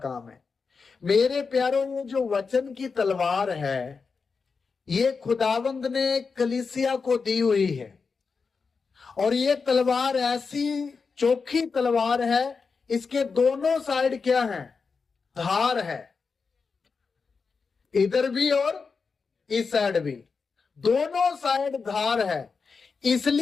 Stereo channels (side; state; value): right; quieter; 5.0 dB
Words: है। मेरे प्यारों, ये जो वचन की तलवार है, ये खुदावंद ने कलीसिया को दी हुई है। और ये तलवार ऐसी चोखी तलवार है, इसके दोनों साइड क्या है, धार है, इधर भी और इस साइड भी, दोनों साइड धार है।